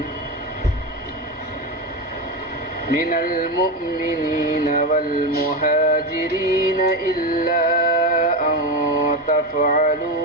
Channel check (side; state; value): both; normal; correlation 0.15